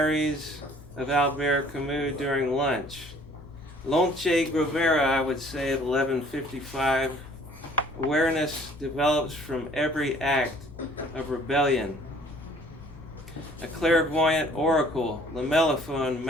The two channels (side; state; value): both; normal; correlation 0.55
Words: of Albert Camus during lunch. Lonche Grovera, I would say, at 11:55. Awareness develops from every act of rebellion. A clairvoyant oracle, lamelliphone